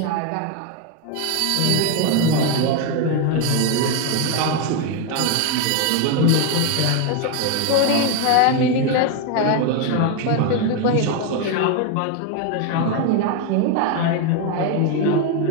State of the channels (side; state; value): both; different; correlation 0.01